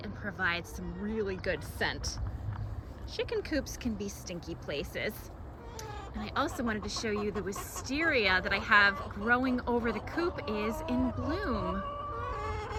and provide some really good scent. Chicken coops can be stinky places. And I also wanted to show you the wisteria that I have growing over the coop is in bloom.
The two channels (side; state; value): both; identical; correlation 1.00